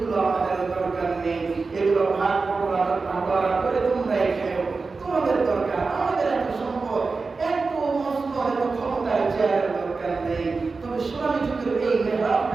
আমাদের দরকার নেই, এগুলো ভাগ বটোয়ারা করে তোমরাই খেও, তোমাদের দরকার। আমাদের এত সম্পদ, এত মসনদ, এত ক্ষমতার চেয়ারের দরকার নেই। তবে সোনালী যুগের এই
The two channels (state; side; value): quieter; left; 4.2 dB